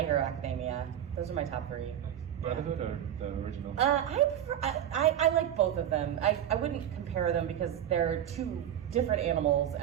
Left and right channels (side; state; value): left; quieter; 10.5 dB